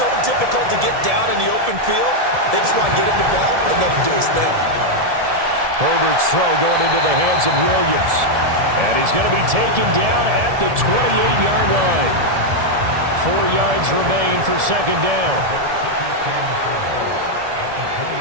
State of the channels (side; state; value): left; late; 1.7 ms